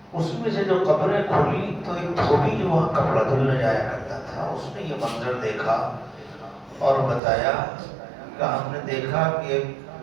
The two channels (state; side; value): drops out; left; at 7.2 s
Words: اس میں سے جو قبریں کھلی تو ایک دھوبی جو وہاں کپڑا دھلنے جایا کرتا تھا، اس نے یہ منظر دیکھا اور بتایا کہ ہم نے دیکھا کہ